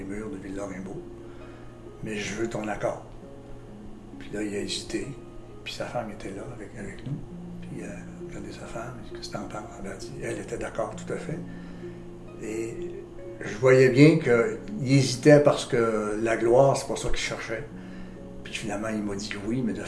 murs de Ville-Lorrainbeau, mais je veux ton accord. Puis là, il a hésité, puis sa femme était là avec nous, puis regardez sa femme, il dit, qu'est-ce que t'en penses? Elle a dit, elle était d'accord tout à fait. Et je voyais bien qu'il hésitait parce que la gloire, c'est pas ça qu'il cherchait. Puis finalement, il m'a dit oui, mais de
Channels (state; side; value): identical; both; correlation 1.00